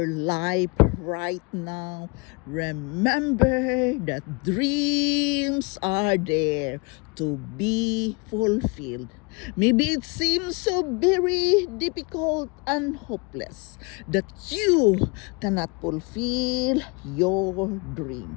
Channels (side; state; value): right; quieter; 30.1 dB